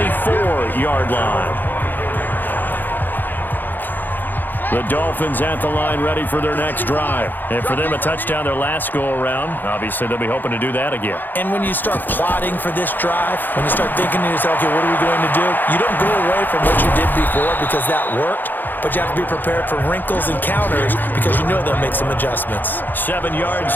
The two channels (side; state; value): right; late; 0.089 ms